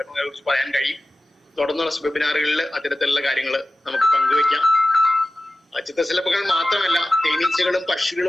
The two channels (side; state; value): both; normal; correlation 0.94